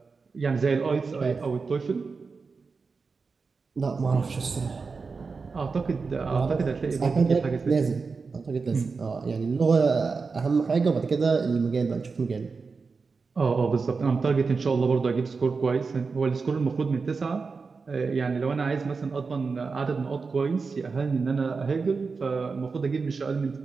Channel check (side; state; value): left; quieter; 4.7 dB